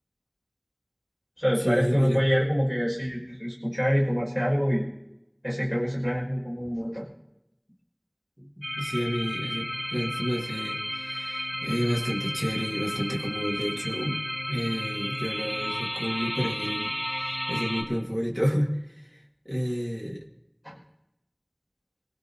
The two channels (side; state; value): both; identical; correlation 1.00